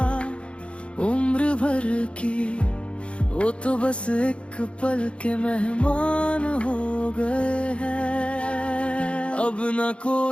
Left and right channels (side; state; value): right; late; 0.059 ms